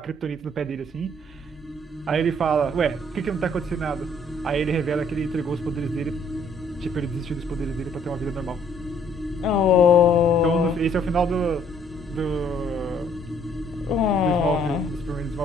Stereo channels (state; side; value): normal; both; correlation 0.63